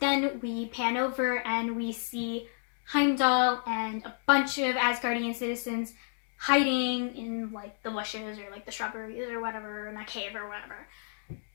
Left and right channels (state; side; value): silent; right; digital silence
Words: pan over and we see Heimdall and a bunch of Asgardian citizens hiding in the bushes or the shrubberies or whatever, in a cave or whatever.